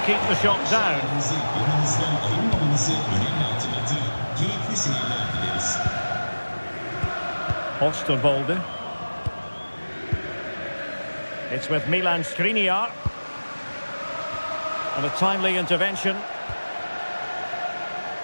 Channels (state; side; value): inverted; both; correlation -1.00